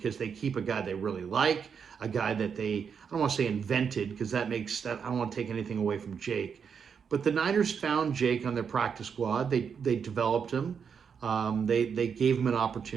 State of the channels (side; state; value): left; quieter; 6.7 dB